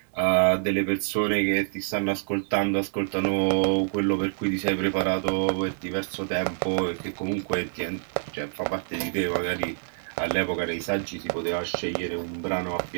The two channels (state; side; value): silent; left; digital silence